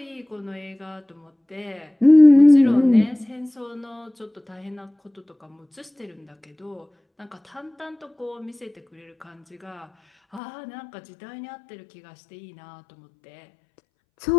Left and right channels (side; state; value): right; drops out; at 10.4 s